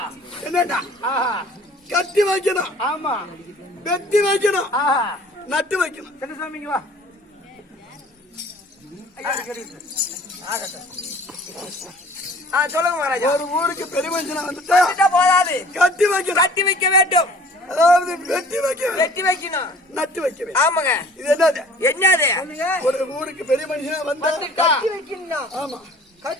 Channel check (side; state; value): both; normal; correlation 0.50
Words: என்னடா? கட்டி வைக்கணும், ஆமா வெட்டி வைக்கணும், நட்டு வைக்கணும். சின்னசாமிங்க வா. சொல்லுங்க மகாராஜா. ஒரு ஊருக்கு பெரிய மனுஷனா வந்துட்டா வந்துட்டா போதாது, கட்டி வைக்கணும். கட்டி வைக்க வேண்டும். அதாவது வெட்டி வைக்க வெட்டி வைக்கணும். நட்டு வைக்க வேண்டும். ஆமாங்க. இது என்னது? என்னது? ஒரு ஊருக்கு பெரிய மனுஷனா வந்தா கட்டி வைக்கணும். ஆமா